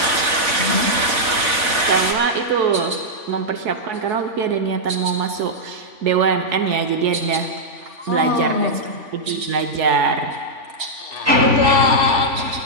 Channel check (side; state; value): left; late; 3.5 ms